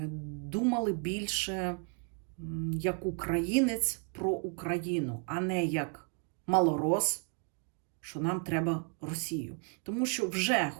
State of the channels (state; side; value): quieter; left; 38.0 dB